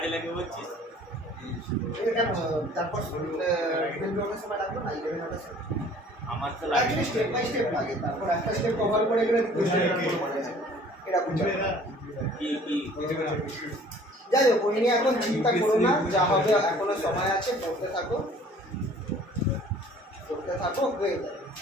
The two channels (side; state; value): both; normal; correlation 0.52